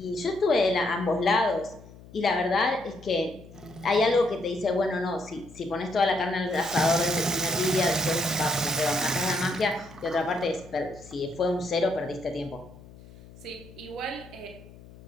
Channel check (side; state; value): left; noise; hum, 20 dB below the sound